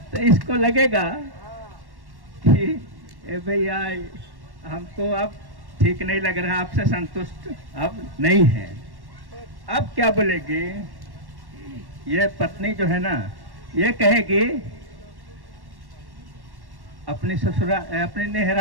तो इसको लगेगा कि ए भैया हमको अब ठीक नहीं लग रहा, आपसे संतुष्ट अब नहीं है। अब क्या बोलेगी ये पत्नी जो है ना, ये कहेगी अपनी ससुरा अपनी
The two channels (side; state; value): left; late; 1.1 ms